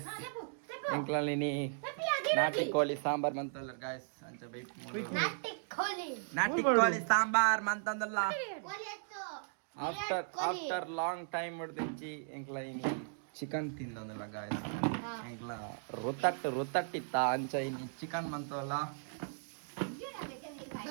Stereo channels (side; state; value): left; silent; digital silence